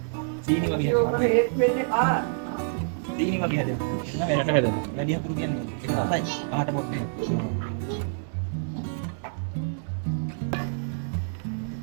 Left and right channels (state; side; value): silent; left; digital silence